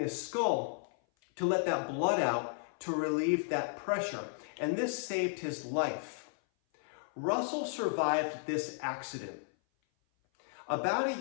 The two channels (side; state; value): right; silent; 55 dB below the other